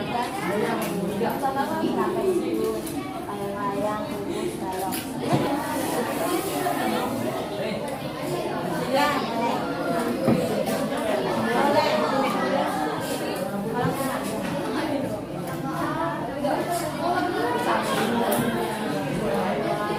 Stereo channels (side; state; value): both; identical; correlation 1.00